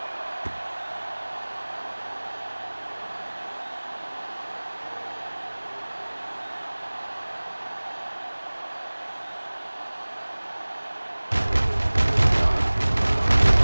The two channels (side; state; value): both; inverted; correlation -1.00